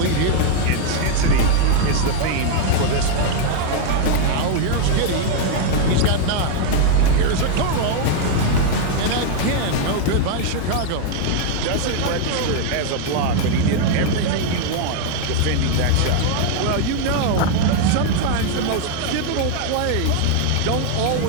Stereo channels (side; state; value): both; different; correlation 0.00